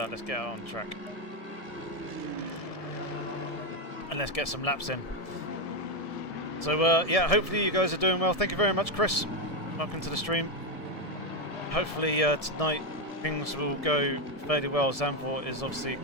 Let's get on track. And let's get some laps in. So, yeah, hopefully you guys are doing well. Thank you very much, Chris. Welcome to the stream. Hopefully tonight things will go fairly well. Zandvoort is obviously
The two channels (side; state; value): right; late; 1.7 ms